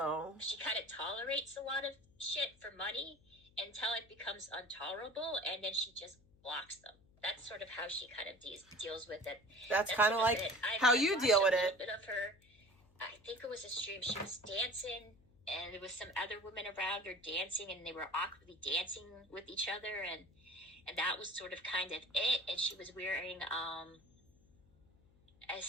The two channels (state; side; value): noise; left; hum, 29 dB below the sound